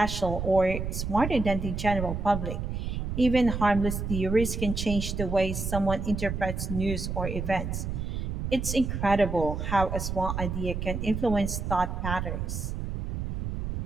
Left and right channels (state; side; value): noise; right; rumble, 3 dB below the sound